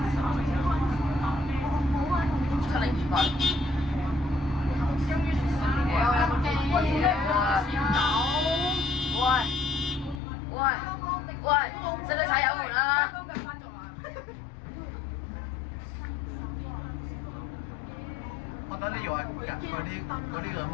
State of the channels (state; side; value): drops out; right; at 10.2 s